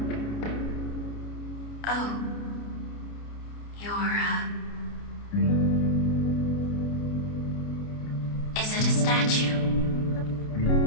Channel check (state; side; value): late; right; 29 ms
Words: Oh. You're, Is it a statue?